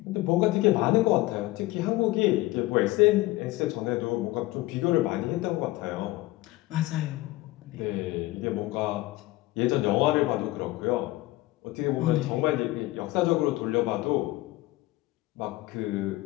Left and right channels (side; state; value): right; quieter; 18.8 dB